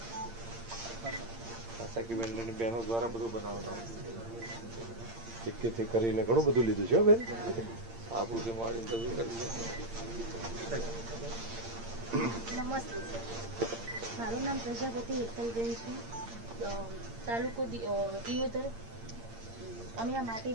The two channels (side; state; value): left; late; 8.7 ms